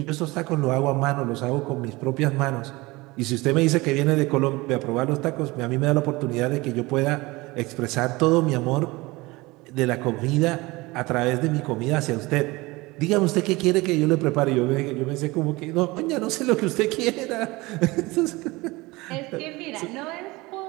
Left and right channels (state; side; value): quieter; left; 22.1 dB